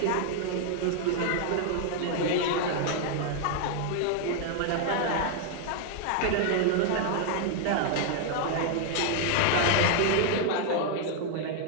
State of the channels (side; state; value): both; different; correlation 0.00